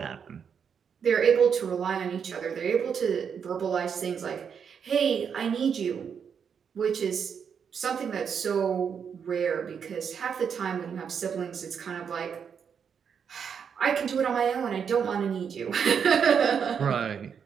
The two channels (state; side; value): quieter; left; 7.1 dB